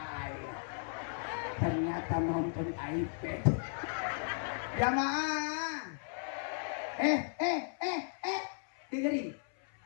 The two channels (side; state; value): right; silent; 54 dB below the other